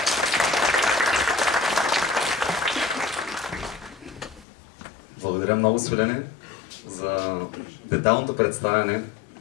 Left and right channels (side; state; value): right; drops out; at 4.5 s